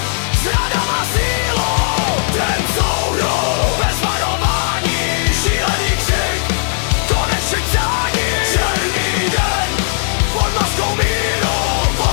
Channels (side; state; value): right; silent; digital silence